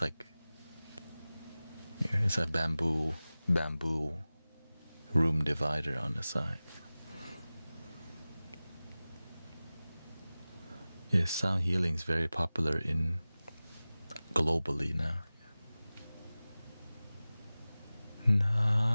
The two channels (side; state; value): both; inverted; correlation -0.97